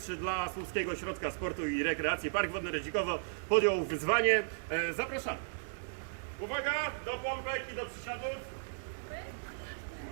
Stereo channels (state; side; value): silent; left; digital silence